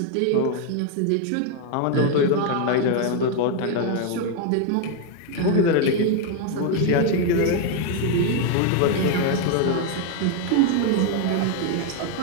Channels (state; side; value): different; both; correlation 0.01